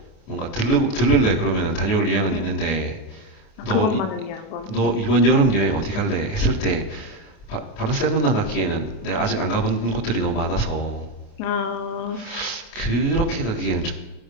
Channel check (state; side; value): late; right; 28 ms